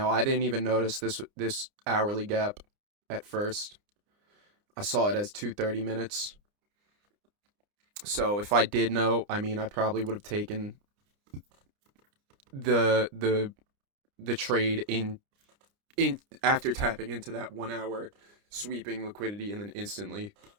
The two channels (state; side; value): late; left; 29 ms